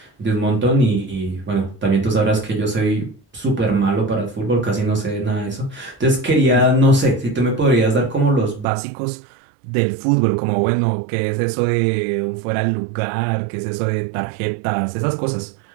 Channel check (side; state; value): left; drops out; at 8.7 s